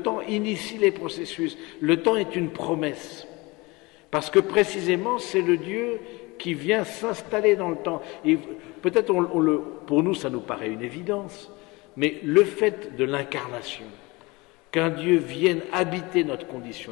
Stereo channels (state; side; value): quieter; right; 24.1 dB